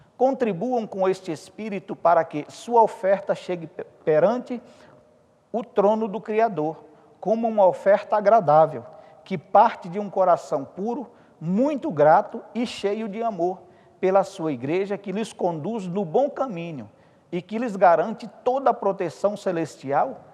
contribuam com este espírito para que sua oferta chegue perante o trono do Criador, como uma oferta agradável, que parte de um coração puro, muito grato e cheio de amor pela sua Igreja, que lhes conduz no bom caminho e que lhes garante toda a proteção celestial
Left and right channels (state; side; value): identical; both; correlation 1.00